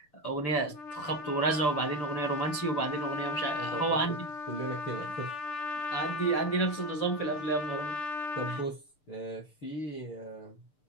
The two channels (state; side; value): late; right; 6.8 ms